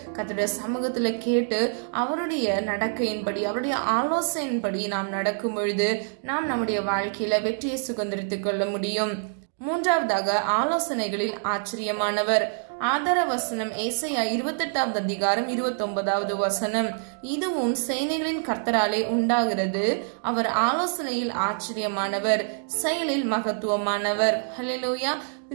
கர்த்தருடைய சமூகத்துல கேட்டு அவருடைய நடக்கையின்படி, அவருடைய ஆலோசனையின்படி நாம் நடக்கும் பொழுது நாம் நம்முடைய வாழ்க்கையில வெற்றியை சுதந்திரித்துக் கொள்ள முடியும். மூன்றாவதாக, ஆலோசனைகளில் ஆச்சரியமானவர். ஆதார வசனம் ஏசாயா 28வது அதிகாரம் 29வது வசனம். இதுவும் சேனைகளின் கர்த்தராலே உண்டாகிறது, அவர் ஆலோசனையில் ஆச்சரியமானவர், செயலில் மகத்துவமானவர். ஹல்லேலூயா.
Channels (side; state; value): left; silent; digital silence